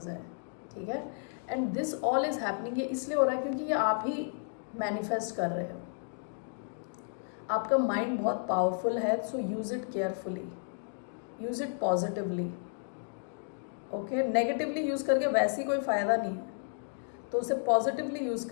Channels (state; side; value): silent; right; digital silence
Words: हैं, ठीक है। And this all is happening, ये इसलिए हो रहा है क्योंकि ये आप ही मैनिफेस्ट कर रहे हो। आपका माइंड बहुत पावरफुल है, so use it carefully, use it positively, okay. Negatively use करके वैसे ही कोई फ़ायदा नहीं, तो उसे पॉजिटिवली यूज़